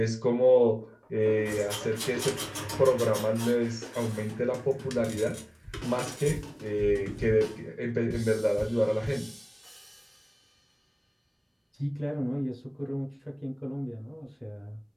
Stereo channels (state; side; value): identical; both; correlation 1.00